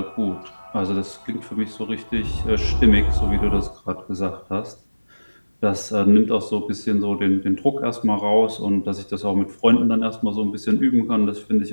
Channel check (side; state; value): both; inverted; correlation -1.00